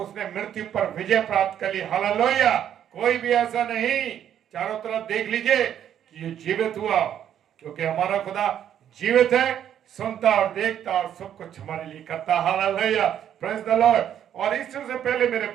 मृत्यु पर विजय प्राप्त कर ली। हालेलुया, कोई भी ऐसा नहीं, चारों तरफ देख लीजिए कि ये जीवित हुआ, क्योंकि हमारा खुदा जीवित है, सुनता और देखता और सब कुछ हमारे लिए करता। Hallelujah, praise the Lord. और ईस्टर से पहले मेरे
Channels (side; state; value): left; quieter; 9.9 dB